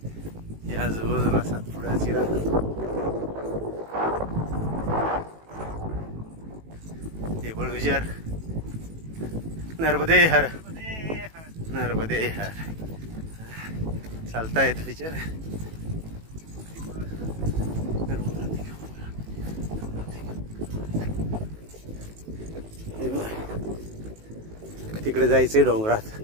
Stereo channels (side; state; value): left; late; 18 ms